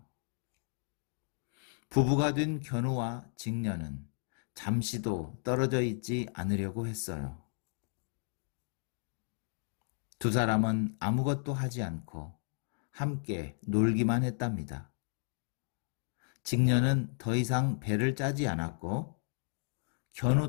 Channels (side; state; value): right; silent; 55 dB below the other